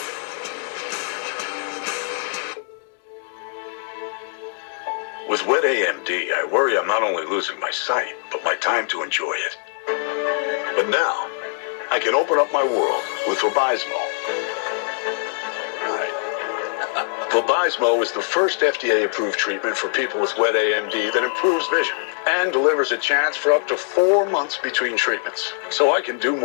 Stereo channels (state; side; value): silent; right; 63 dB below the other